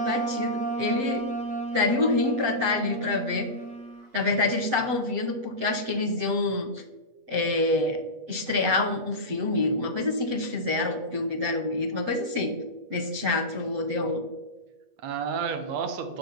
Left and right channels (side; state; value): left; late; 7.7 ms